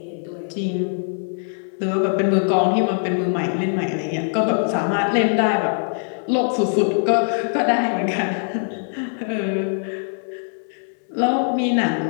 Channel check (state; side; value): silent; right; 64 dB below the other